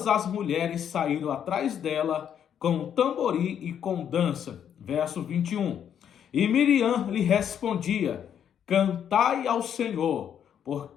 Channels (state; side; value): quieter; right; 8.9 dB